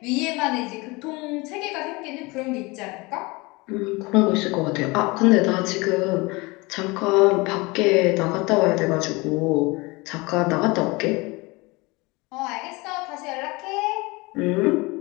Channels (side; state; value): right; quieter; 24.6 dB